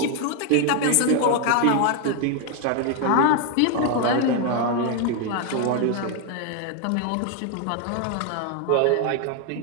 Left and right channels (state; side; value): different; both; correlation 0.00